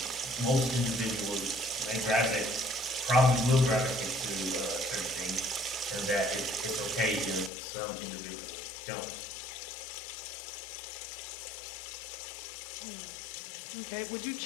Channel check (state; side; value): drops out; right; at 7.5 s